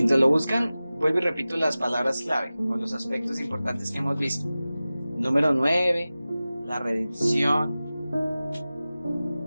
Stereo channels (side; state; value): both; inverted; correlation -0.97